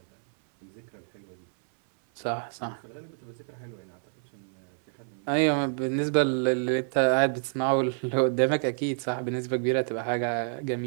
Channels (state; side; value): silent; left; 59 dB below the other